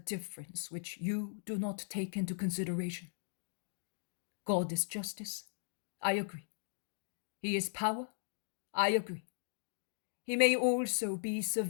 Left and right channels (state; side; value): silent; right; digital silence